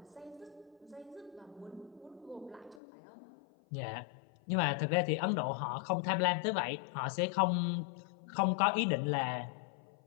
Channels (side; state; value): right; drops out; at 2.8 s